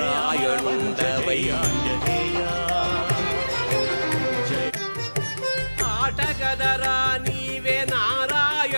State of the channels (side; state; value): both; inverted; correlation -1.00